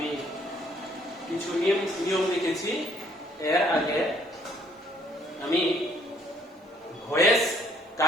কিছু নিয়ম লিখেছি। এর আগে আমি ভয়েস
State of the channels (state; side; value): normal; both; correlation 0.64